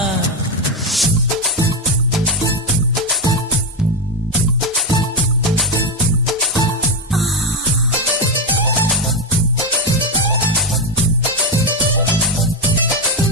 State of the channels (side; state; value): both; normal; correlation 0.09